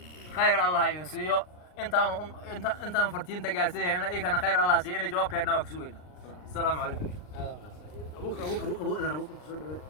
خير الله ينسيه انت فرتين تجارسيه هنا إيه كان خير الله سي أنا جواب كأنه وكسوينا السلام عليكم أبوك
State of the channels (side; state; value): right; late; 39 ms